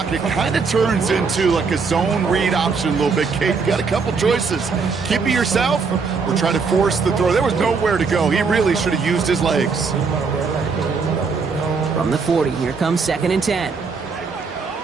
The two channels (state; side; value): quieter; left; 5.0 dB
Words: kind of turns into like a zone read option a little bit, Kate. You got a couple choices. Keep it yourself or try to force the throw. There was nowhere to go. He really should have used his legs. From the 40, here comes 2nd and 10.